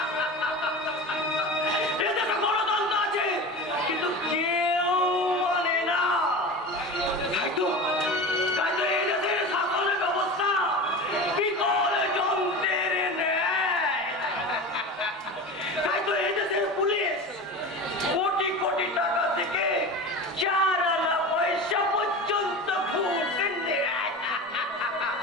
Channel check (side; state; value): both; normal; correlation 0.30